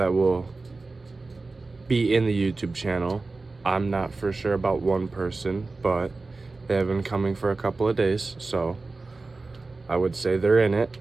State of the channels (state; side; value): quieter; left; 3.6 dB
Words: will be in the YouTube channel, I'm not for sure about one person, but they have been coming for a couple of days, so I would say they're in it.